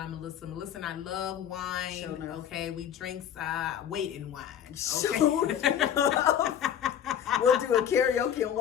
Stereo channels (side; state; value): right; quieter; 9.4 dB